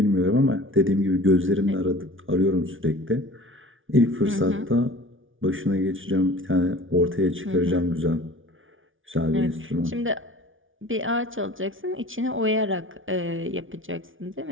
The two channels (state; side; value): late; left; 0.57 ms